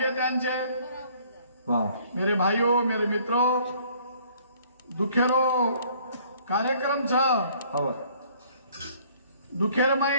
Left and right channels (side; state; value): both; inverted; correlation -0.58